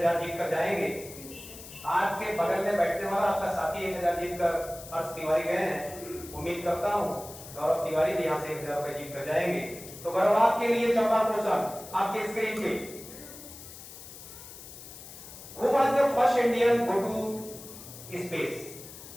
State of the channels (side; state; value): left; noise; hiss, 15 dB below the sound